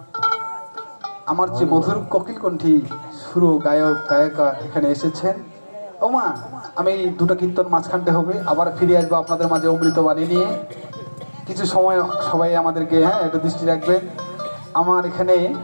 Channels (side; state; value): both; inverted; correlation -1.00